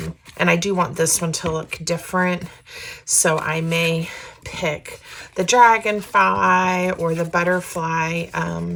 I do want this one to look different, so I may pick the dragonfly or the butterfly,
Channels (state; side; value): identical; both; correlation 1.00